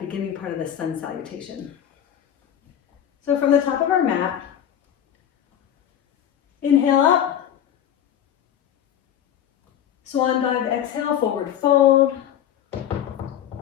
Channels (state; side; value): quieter; right; 10.1 dB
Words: part of the sun salutation. So from the top of our mat, inhale up, swan dive, exhale, forward fold.